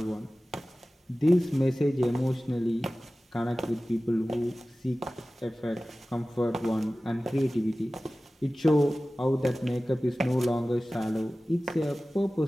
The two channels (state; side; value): normal; both; correlation 0.97